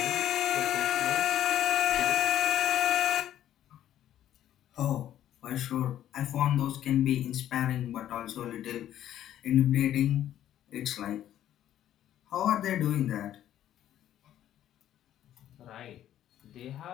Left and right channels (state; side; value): quieter; right; 11.7 dB